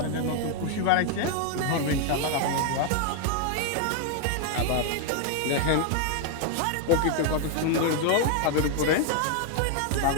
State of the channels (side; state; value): both; different; correlation 0.00